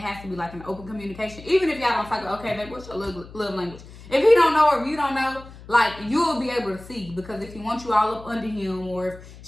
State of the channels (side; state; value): left; noise; hum, 18 dB below the sound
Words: to be like an open communication. Even if y'all don't talk, okay, babe, what's your love language? If he don't know or if you don't know, like, you'll be able to see, because if he wants you all up under him, or if